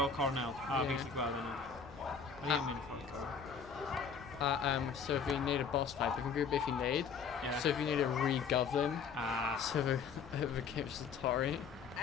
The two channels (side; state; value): right; quieter; 6.0 dB